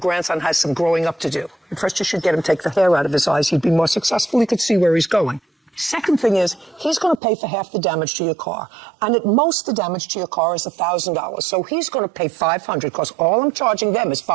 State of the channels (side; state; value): left; drops out; at 7.2 s